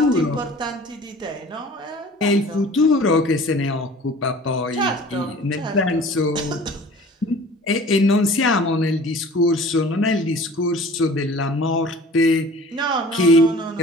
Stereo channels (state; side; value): normal; both; correlation 0.45